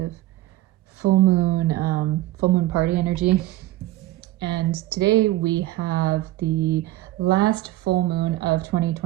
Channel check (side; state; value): left; quieter; 16.0 dB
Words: full moon party energy. And today we have the last full moon of